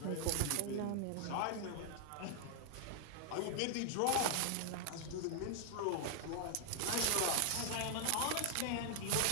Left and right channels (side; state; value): both; different; correlation 0.00